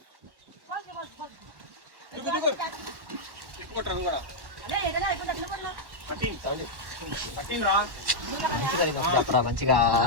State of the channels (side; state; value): left; late; 1.1 ms